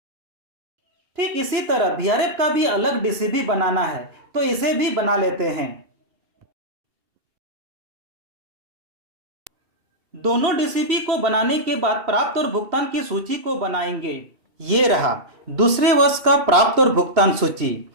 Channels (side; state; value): left; late; 2.7 ms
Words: ठीक इसी तरह वीआरएफ का भी अलग डीसीबी बनाना है, तो इसे भी बना लेते हैं। दोनों डीसीबी को बनाने के बाद प्राप्त और भुगतान की सूची को बनाएंगे। ये रहा दूसरे वर्ष का प्राप्त और भुगतान सूची।